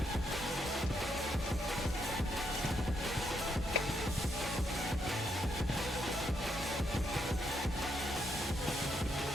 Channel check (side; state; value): both; normal; correlation 0.77